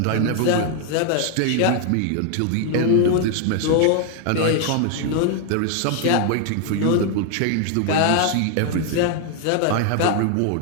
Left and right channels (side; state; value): both; different; correlation 0.00